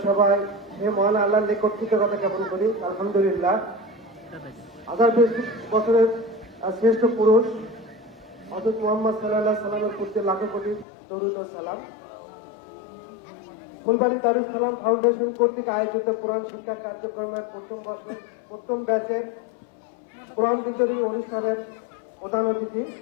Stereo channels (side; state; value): right; drops out; at 10.9 s